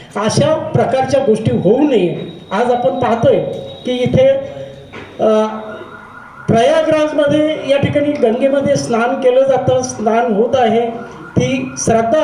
अशा प्रकारच्या गोष्टी होऊ नये. आज आपण पाहतोय की इथे प्रयागराजमध्ये या ठिकाणी गंगेमध्ये स्नान केलं जातं, स्नान होत आहे, ती श्रद्धा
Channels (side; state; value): both; identical; correlation 1.00